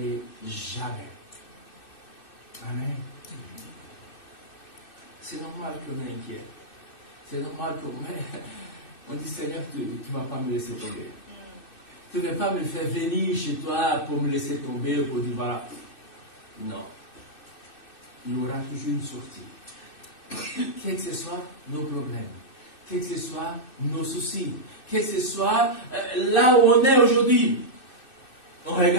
jamais. Amen. C'est normal qu'on est inquiet. C'est normal qu'on dit, Seigneur, tu ne vas pas me laisser tomber. Tu ne vas pas me faire venir chez toi pour me laisser tomber ou pour dire, voilà. Non. Il y aura toujours une sortie. Quels que soient nos problèmes, quels que soient nos soucis, quel que soit là où on est aujourd'hui. En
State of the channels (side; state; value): right; late; 2.6 ms